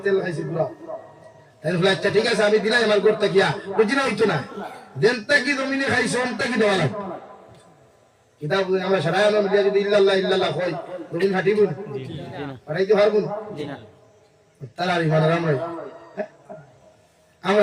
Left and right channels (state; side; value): identical; both; correlation 1.00